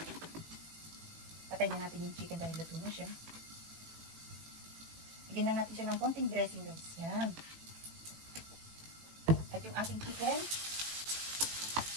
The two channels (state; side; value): late; left; 18 ms